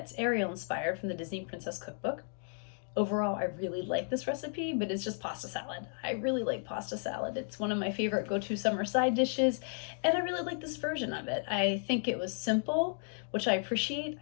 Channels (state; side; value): silent; right; 55 dB below the other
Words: Ariel inspired from the Disney Princess Cookbook. Overall, I really like this recipe, but it's just pasta salad. I really like pasta salad. It's one of my favorite go-to summer side dishes, and I really like this version of it. I think it was simple, which I appreciate.